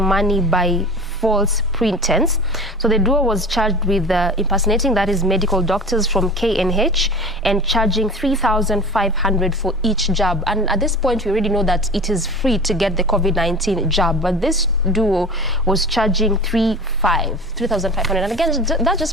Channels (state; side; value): normal; both; correlation 0.36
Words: by false pretense. So the duo was charged with impersonating, that is medical doctors from KNH, and charging 3,500 for each jab. And at this point we already know that it is free to get the COVID-19 jab, but this duo was charging 3,500. And again, that